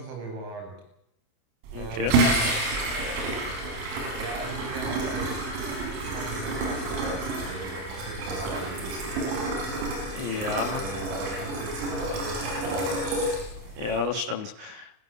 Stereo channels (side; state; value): left; late; 28 ms